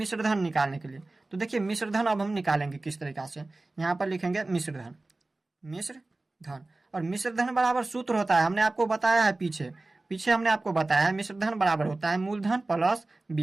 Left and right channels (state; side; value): quieter; left; 3.1 dB